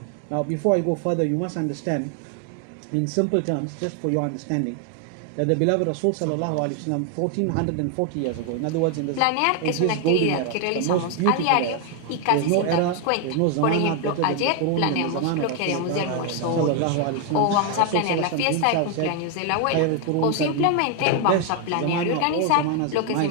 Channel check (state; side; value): different; both; correlation 0.01